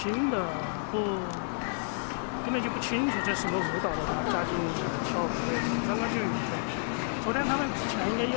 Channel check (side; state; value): right; silent; 58 dB below the other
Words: 的根本就不清楚这什么舞蹈的话，加进跳舞的，刚刚就有的。昨天他们之前应该有，